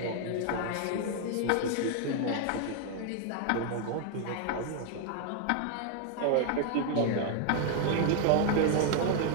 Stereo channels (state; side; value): different; both; correlation 0.00